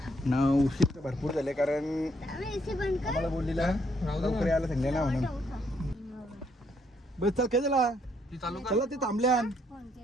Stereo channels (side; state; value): both; normal; correlation 0.71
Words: ना उशीर भरपूर झाले कारण आम्हाला बोललेला लवकर यायला सांगले ना म्हणून. बस चल काय झाला चला ते थांबल्या.